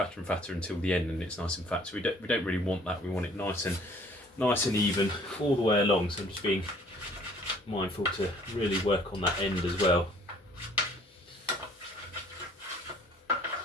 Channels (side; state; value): both; normal; correlation 0.56